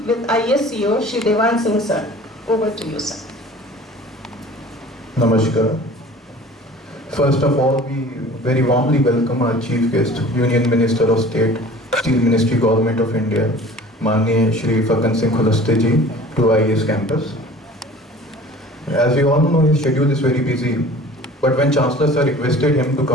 with IES CEO Shri Devan Singh sir. Over to you, sir. Namaskar. First of all, we very warmly welcome our chief guest, Union Minister of State, Steel Ministry, Government of India, Manya Shri Pagan Singh Kulaste ji, to IES campus. As we all know, his schedule is very busy, But when Chancellor Sir requested him to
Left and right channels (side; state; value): both; normal; correlation 0.45